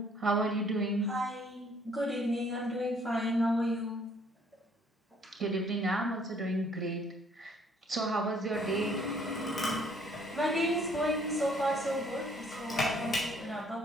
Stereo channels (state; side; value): normal; both; correlation 0.62